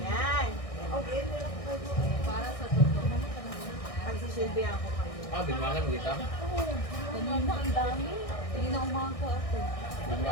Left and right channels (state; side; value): late; right; 1.6 ms